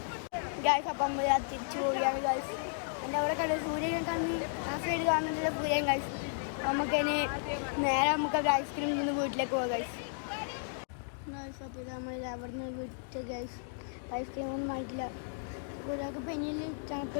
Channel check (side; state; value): right; silent; digital silence